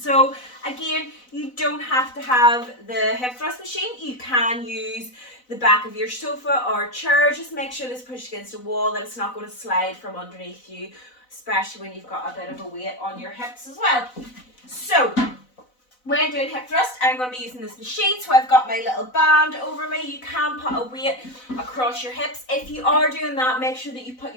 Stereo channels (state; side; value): late; right; 4.0 ms